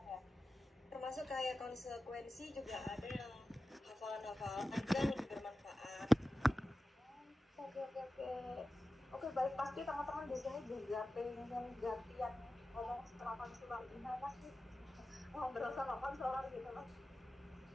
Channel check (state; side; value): normal; both; correlation 0.94